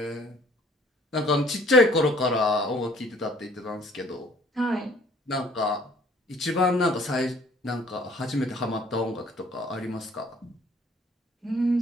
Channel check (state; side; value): normal; both; correlation 0.57